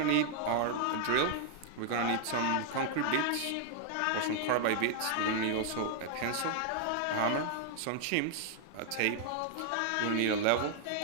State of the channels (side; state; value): both; different; correlation 0.00